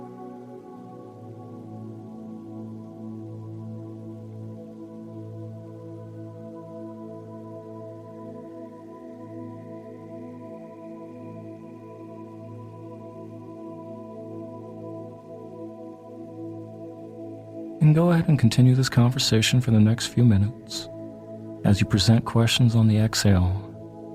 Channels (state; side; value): identical; both; correlation 1.00